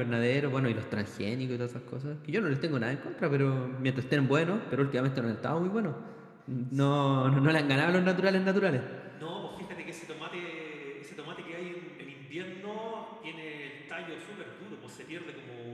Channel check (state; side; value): identical; both; correlation 1.00